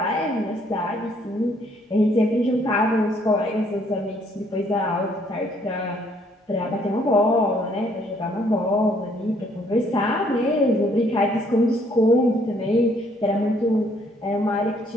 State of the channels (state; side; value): normal; both; correlation 0.65